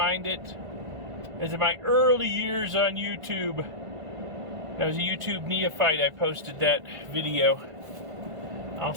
it. As in my early years on YouTube, I was a YouTube neophyte, I posted that video. I'll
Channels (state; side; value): late; left; 1.5 ms